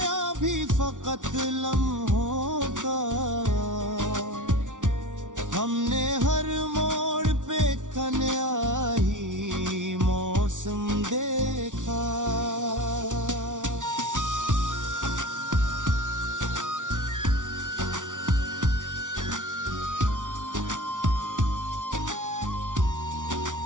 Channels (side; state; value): left; late; 0.87 ms